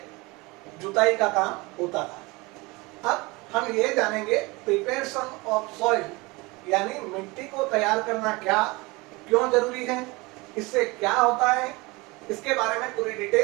जुताई का काम होता था। अब हम ये जानेंगे प्रिपरेशन ऑफ सॉइल, यानी मिट्टी को तैयार करना क्या, क्यों जरूरी है, इससे क्या होता है, इसके बारे में पूरी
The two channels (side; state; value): left; quieter; 24.4 dB